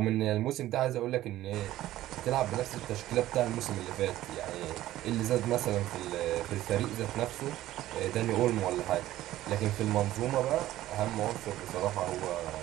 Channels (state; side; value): quieter; left; 14.6 dB